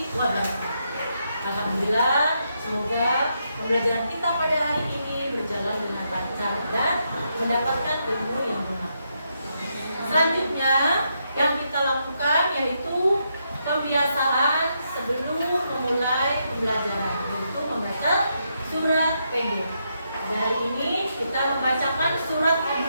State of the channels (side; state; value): both; inverted; correlation -0.80